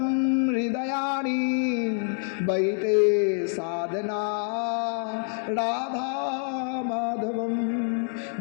হৃদয়ানি বৈতে সাধনা রাধা মাধবম।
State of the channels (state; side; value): silent; right; 60 dB below the other